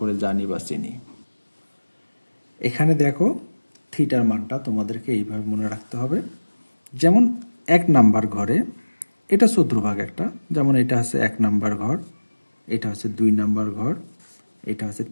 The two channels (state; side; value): inverted; both; correlation -1.00